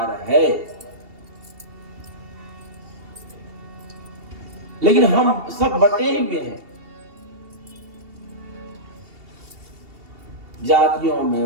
है। लेकिन हम सब बटे हुए हैं जातियों में,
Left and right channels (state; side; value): late; left; 2.7 ms